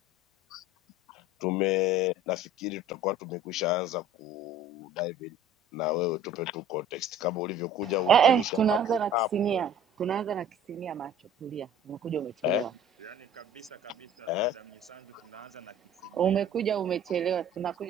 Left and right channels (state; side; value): normal; both; correlation 0.47